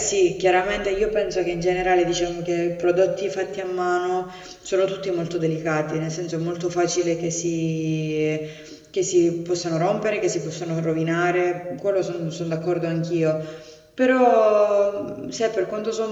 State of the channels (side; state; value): both; identical; correlation 1.00